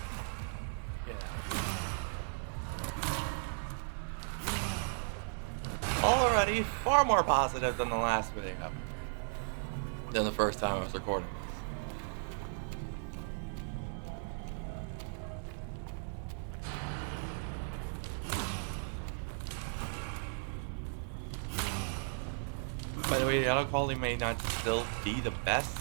Yeah. Already far more positive than the last video. Than the first time I was recording this. By the way, the audio quality may not still be the best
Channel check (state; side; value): silent; left; 54 dB below the other